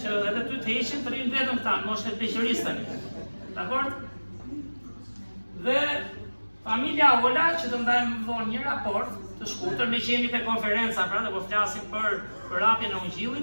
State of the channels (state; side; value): inverted; both; correlation -1.00